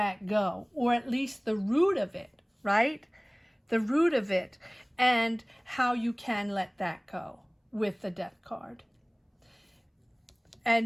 go, or at least the root of it, right? The root of it, and how you can let that go with the Death card.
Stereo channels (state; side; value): identical; both; correlation 1.00